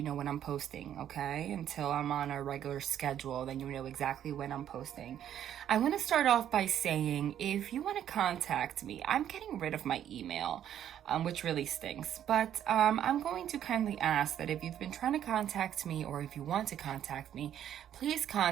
know when I'm posting, okay? Until I'm on a regular schedule, then you know exactly when I'm posting. I want to start off by saying, if you want to contact me, I'm getting rid of my email, which really stinks. But I'm going to kindly ask that if you've been trying to contact me, or if you want to contact me, please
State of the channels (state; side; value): quieter; left; 10.4 dB